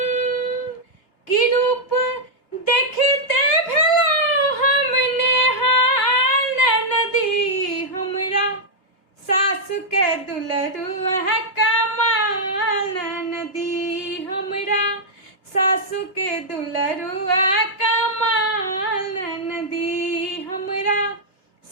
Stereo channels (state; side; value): late; right; 2.7 ms